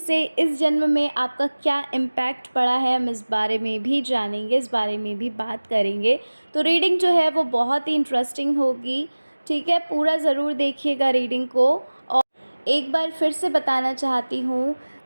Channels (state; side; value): inverted; both; correlation -1.00